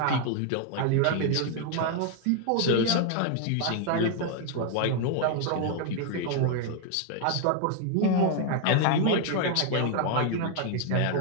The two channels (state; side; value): different; both; correlation 0.00